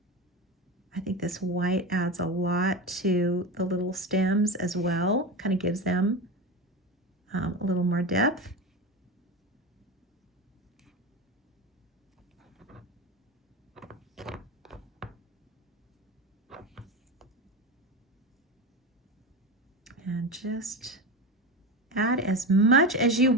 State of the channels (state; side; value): normal; both; correlation 0.22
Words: I think this white adds a lot to the little stems as well. Kind of gives them a little more depth. And just add as much as you